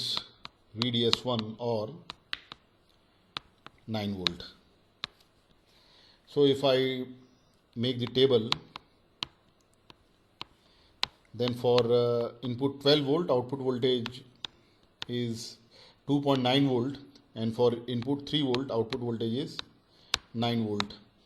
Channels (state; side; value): identical; both; correlation 1.00